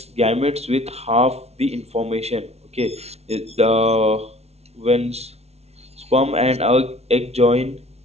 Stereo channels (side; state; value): left; late; 0.31 ms